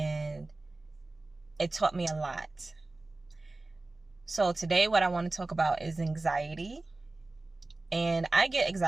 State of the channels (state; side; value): quieter; left; 3.1 dB